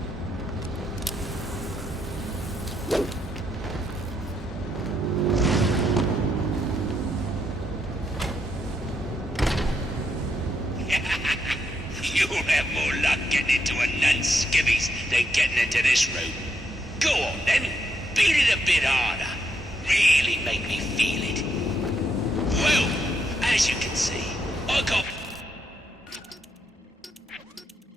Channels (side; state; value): both; normal; correlation 0.78